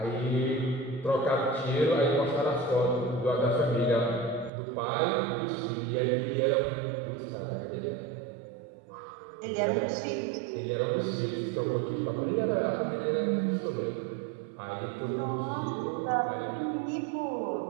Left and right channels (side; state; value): left; drops out; at 4.5 s